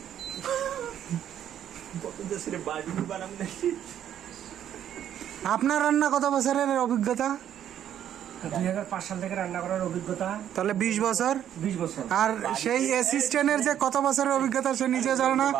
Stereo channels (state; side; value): quieter; left; 10.3 dB